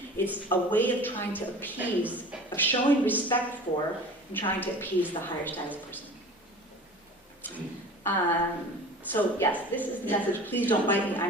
it's a way of trying to appease, of showing respect for, and trying to appease the higher status person. So yes, this is the message, please don't write me,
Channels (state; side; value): normal; both; correlation 0.40